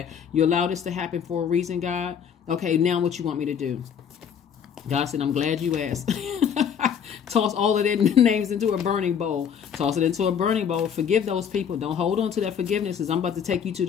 you allowed this to happen for a reason, God. Okay, now what you want me to do? God said, I'm glad you asked. Toss all of their names into a burning bowl. Toss it into a burning bowl. Forgive those people. Don't hold on to that forgiveness, because I'm about to take you to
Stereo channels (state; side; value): quieter; right; 7.8 dB